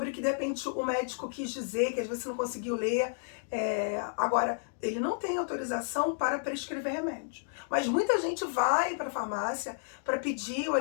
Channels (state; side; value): silent; right; digital silence